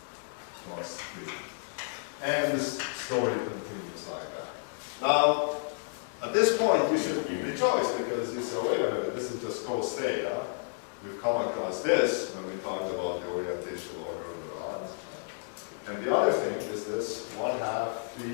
plus 3. And this story continues like that. Now, at this point, you should rejoice because you say, wait a minute, this is just cos theta. We've come across this when we talked about the orientational order of the rods. And the other thing is this 1/2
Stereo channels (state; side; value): silent; right; digital silence